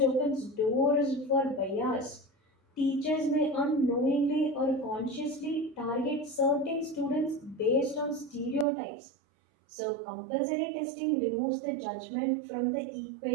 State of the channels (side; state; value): left; drops out; at 8.7 s